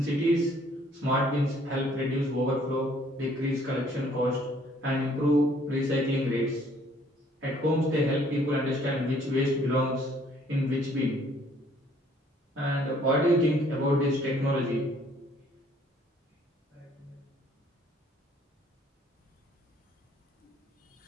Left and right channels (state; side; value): normal; both; correlation 0.61